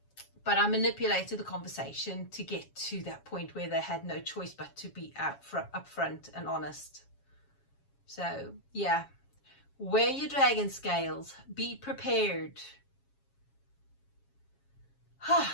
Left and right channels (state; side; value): late; right; 7.3 ms